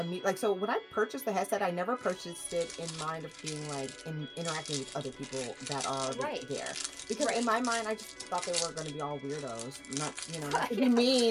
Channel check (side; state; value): both; identical; correlation 1.00